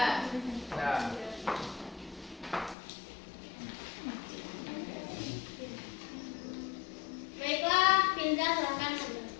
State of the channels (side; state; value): right; drops out; at 2.8 s